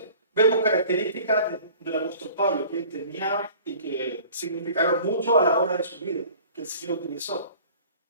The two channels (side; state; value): both; inverted; correlation -0.48